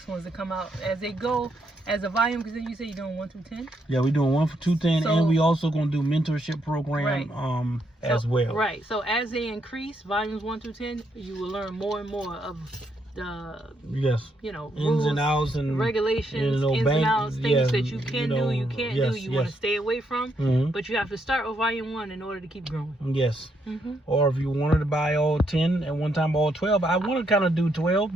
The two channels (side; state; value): both; normal; correlation 0.76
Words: ones to come out as they go as a volume. Because then you say you're doing 1 through 10. Yeah, we're doing 1 for 210, So- and we also gonna do mentorship program Right. as well. Right. So as they increase, volumes 1 through 10, you will learn more and more of the, Yes. rules, Ins and outs and regulations, you know, ins bank- and outs, things yeah, that you can do, you can't yes, do, you want to yes. stay away from. Mhm. But you have to start with volume 1 in order to keep growing. Yes. Mm-hmm. Or if you wanted to buy all 10 at one time, all 12. I want to kind of do 12